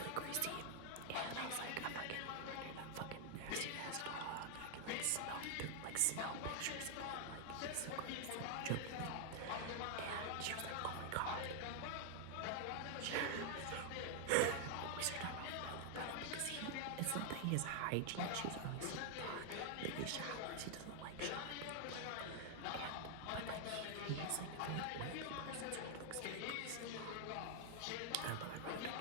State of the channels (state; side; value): different; both; correlation 0.00